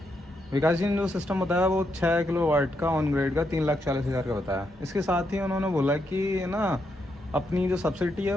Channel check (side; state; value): both; normal; correlation 0.80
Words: विकास जी ने जो सिस्टम बताया वो 6 किलोवाट का ऑन ग्रेड का 3,40,000 का बताया। इसके साथ ही उन्होंने बोला कि ना अपनी जो सब्सिडी है